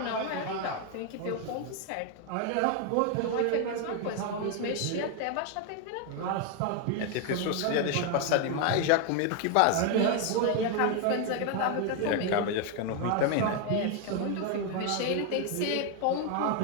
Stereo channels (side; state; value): both; different; correlation 0.01